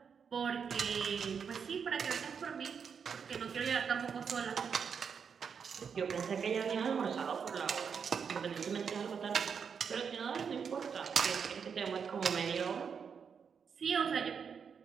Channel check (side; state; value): left; quieter; 6.6 dB